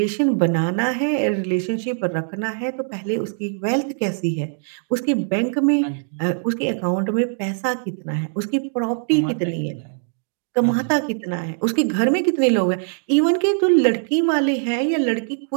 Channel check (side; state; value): left; silent; digital silence